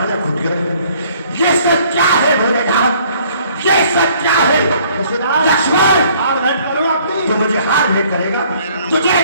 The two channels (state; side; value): inverted; both; correlation -0.59